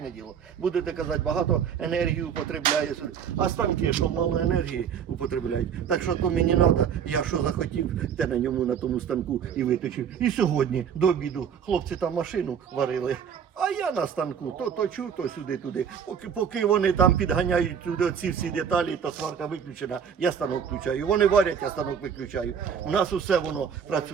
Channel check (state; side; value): quieter; left; 7.7 dB